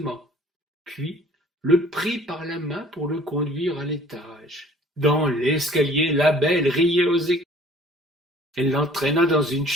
puis le prit par la main pour le conduire à l'étage. Dans l'escalier, la belle riait aux éclats. Elle l'entraîna dans une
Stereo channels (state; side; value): normal; both; correlation 0.53